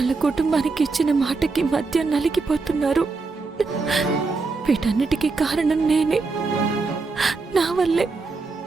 కుటుంబానికి ఇచ్చిన మాటకి మధ్య నలిగిపోతున్నారు. వీటన్నిటికీ కారణం నేనే.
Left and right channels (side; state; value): left; quieter; 4.0 dB